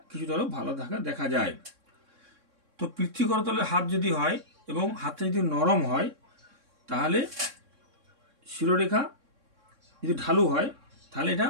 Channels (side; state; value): left; late; 3.6 ms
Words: কিছুটা ভালো দেখা যায়। তো পৃথ্বী করতলের হাত যদি হয় এবং হাতটা যদি নরম হয়, তাহলে শিরোরেখা যদি ঢালু হয়, তাহলে এটা